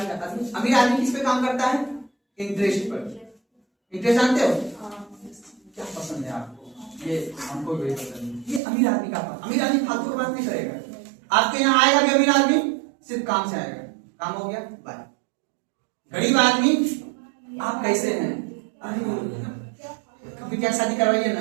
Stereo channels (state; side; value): drops out; left; at 8.6 s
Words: करता है। अमीर आदमी किस पे काम करता है? इंटरेस्ट पर। इंटरेस्ट जानते हो क्या पसंद है आपको? ये हमको भी पसंद है, ये अमीर आदमी का पास। अमीर आदमी फालतू की बात नहीं करेगा, आपके यहाँ आएगा भी अमीर आदमी सिर्फ काम से आएगा, काम हो गया बाय। गरीब आदमी आप कैसे हैं, कभी क्या शादी करवाइए